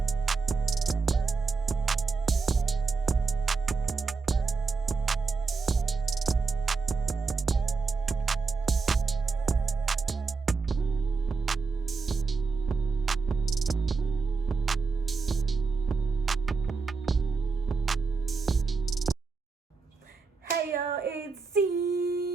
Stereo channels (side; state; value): left; quieter; 4.5 dB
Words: Hey yo, it's